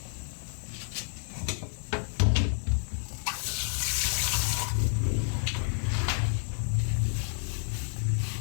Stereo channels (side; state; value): right; silent; digital silence